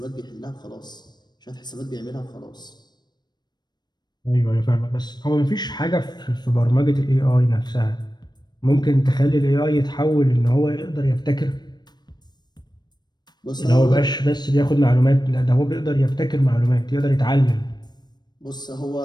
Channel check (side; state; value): right; late; 0.21 ms